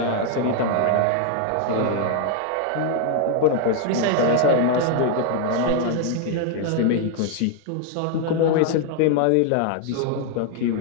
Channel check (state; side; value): different; both; correlation 0.00